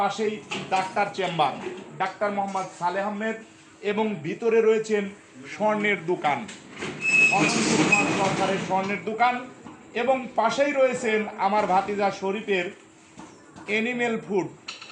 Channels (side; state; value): both; identical; correlation 1.00